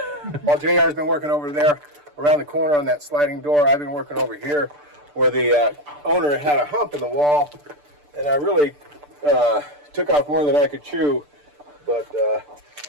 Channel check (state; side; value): late; left; 6.8 ms